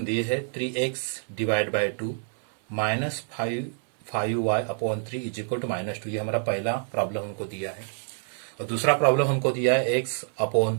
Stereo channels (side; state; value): left; silent; 60 dB below the other